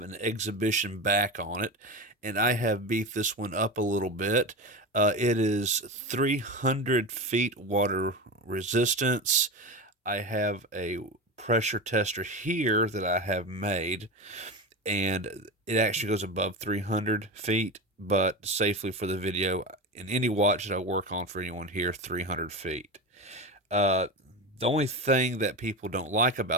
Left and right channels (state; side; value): normal; both; correlation 0.23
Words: an exhibition back on it, and I have beefed this one up a little bit. It is 300 feet water resistance. I have a pressure tester here that I have made, and it actually goes above 300 feet, but safely for the video, in any watch that I work on for anyone here, 300 feet. Uh, the only thing that people don't like